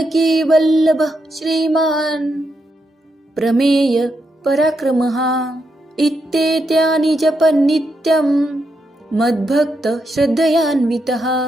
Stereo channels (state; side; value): normal; both; correlation 0.82